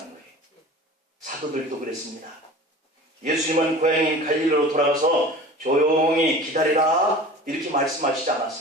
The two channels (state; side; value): normal; both; correlation 0.39